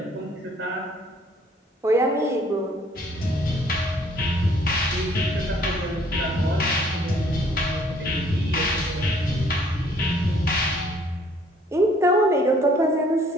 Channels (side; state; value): both; normal; correlation 0.60